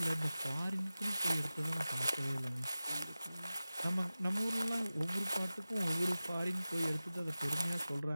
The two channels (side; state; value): both; inverted; correlation -0.96